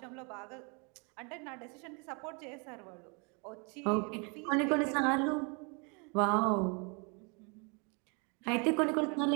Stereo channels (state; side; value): quieter; left; 33.5 dB